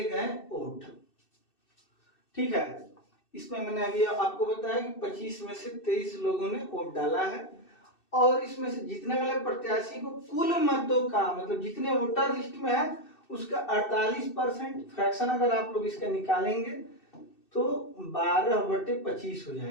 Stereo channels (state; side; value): late; right; 2.6 ms